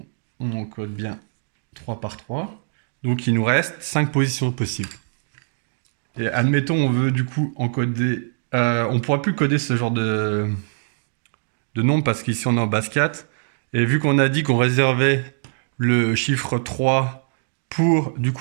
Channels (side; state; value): left; silent; digital silence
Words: on encode bien 3 par 3. Donc il nous reste 5 positions possibles. Et admettons on veut du coup encoder... on ne pourra plus coder ce genre de nombre parce qu'ici on est en base 4. Et vu qu'on a dit qu'on réservait le chiffre 3 pour du